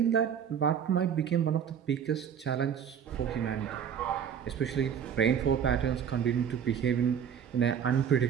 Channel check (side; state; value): left; quieter; 8.2 dB